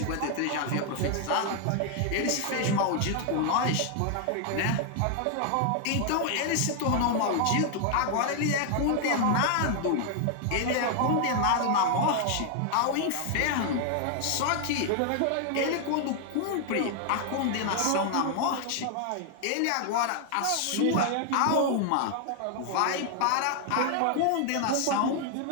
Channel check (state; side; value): different; both; correlation 0.00